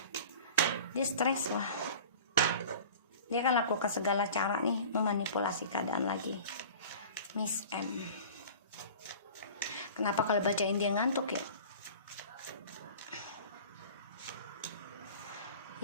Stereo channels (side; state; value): both; inverted; correlation -0.41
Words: dia stres lah, dia akan lakukan segala cara nih memanipulasi keadaan lagi. Miss M, kenapa kalau bacain dia ngantuk ya?